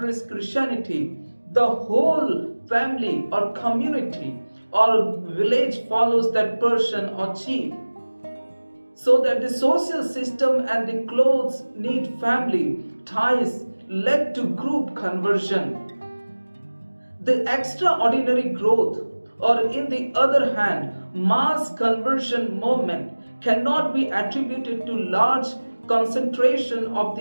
Christianity, the whole family or community or village follows that person or chief. So that the social system and the close knit family ties led to group conversion. The extraordinary growth, or in the other hand, mass conversion movement cannot be attributed to large concentration of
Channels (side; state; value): both; inverted; correlation -1.00